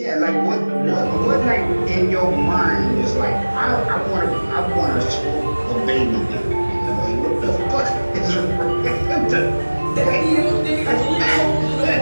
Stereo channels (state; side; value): inverted; both; correlation -1.00